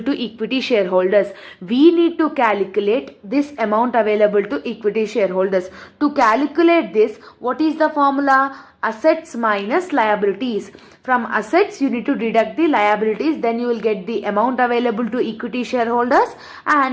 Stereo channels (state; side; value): identical; both; correlation 1.00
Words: equity shareholders. We need to calculate this amount available to equity shareholders. To calculate this, what is the formula? Assets minus liabilities. From assets, you need to deduct the liabilities, then you will get the amount available to equity shareholders